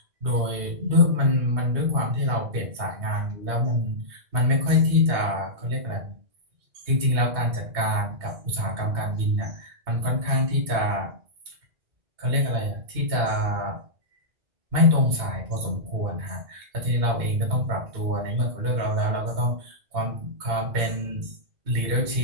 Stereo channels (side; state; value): left; late; 2.7 ms